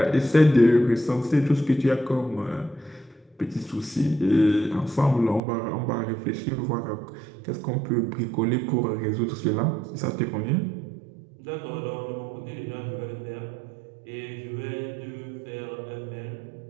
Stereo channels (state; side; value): drops out; left; at 5.4 s